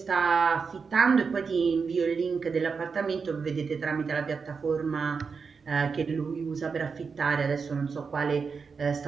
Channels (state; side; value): quieter; left; 5.3 dB